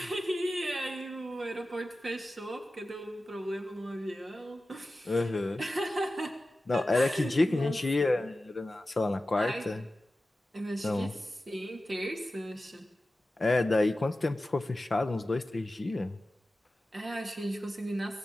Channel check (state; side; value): normal; both; correlation 0.94